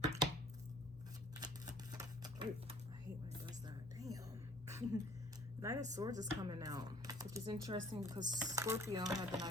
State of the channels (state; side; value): normal; both; correlation 0.53